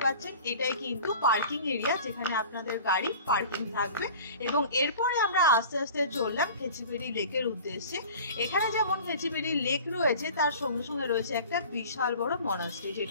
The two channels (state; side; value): inverted; both; correlation -0.42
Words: পাচ্ছেন, এটাই কিন্তু পার্কিং এরিয়া, যেখানে আপনাদের গাড়ি পার্কিং থাকবে। এবং এরপরে আমরা আস্তে আস্তে চললাম খেচিবেড়ি লেকের উদ্দেশ্যে। এখানে যেমন খেচিবেড়ি লেক রয়েছে, তার সঙ্গে সঙ্গে রয়েছে একটা বিশাল বড় মনাস্ট্রি,